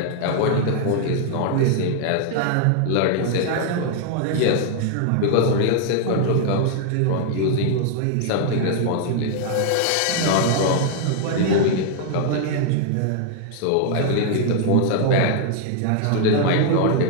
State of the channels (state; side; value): different; both; correlation 0.00